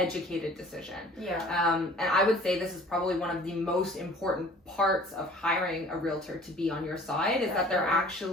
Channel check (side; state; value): both; normal; correlation 0.49